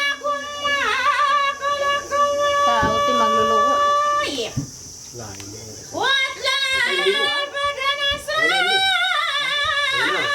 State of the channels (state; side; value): identical; both; correlation 1.00